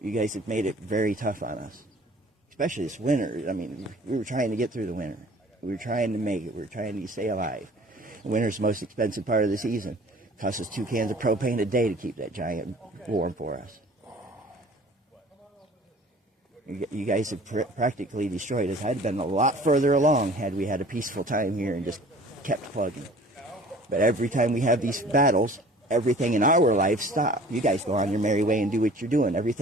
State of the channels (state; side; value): normal; both; correlation 0.49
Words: you guys have made it very tough on us. Especially this winter. I mean, we were trying to get through the winter. We were trying to make it. We were trying to stay alive. Winter's the most expensive part of the season. It costs us 2 cans of propane a day to keep that giant warm for us. You guys have practically destroyed us. I'd been a lot further along had we had a peaceful time here and just kept plugging. But every time we have these battles, everything in our life stops. You guys go on your merry way and do what you're doing.